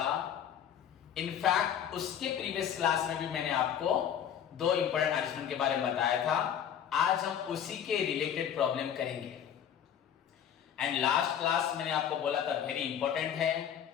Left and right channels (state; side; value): quieter; right; 9.1 dB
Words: इनफैक्ट उसके प्रीवियस क्लास में भी मैंने आपको 2 इंपॉर्टेंट एडजस्टमेंट के बारे में बताया था। आज हम उसी के रिलेटेड प्रॉब्लम करेंगे। एंड लास्ट क्लास मैंने आपको बोला था वेरी इंपॉर्टेंट है।